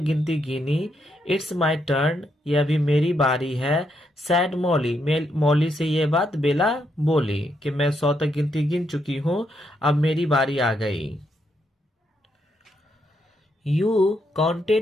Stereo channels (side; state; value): both; normal; correlation 0.78